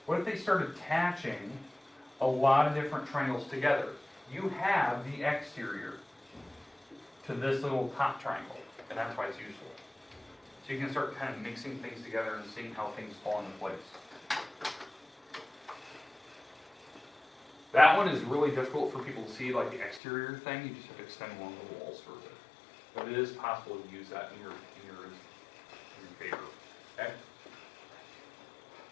What if they start attaching a lot of different triangles together? You have the exterior to this little top triangle, and that's why it's useful. So you can start kind of mixing things together and seeing how things fall into place. That one is really difficult for people to see, like the exterior thing. You just have to extend along the walls for it. But it is possible to use that in your favor. Okay?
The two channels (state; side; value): drops out; right; at 20.0 s